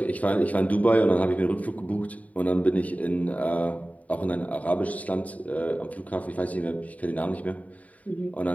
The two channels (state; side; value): late; right; 0.070 ms